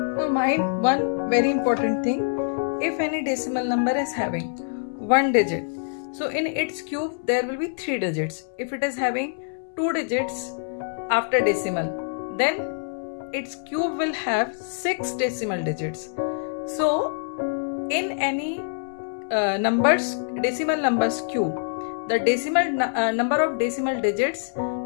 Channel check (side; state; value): right; silent; 61 dB below the other